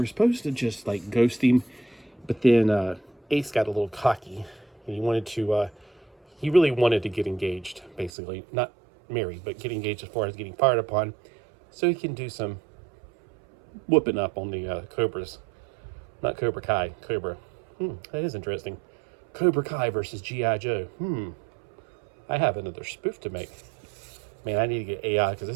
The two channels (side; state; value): left; drops out; at 8.1 s